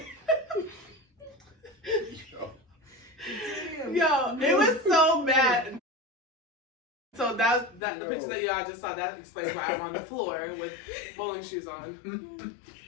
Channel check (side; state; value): right; drops out; at 7.8 s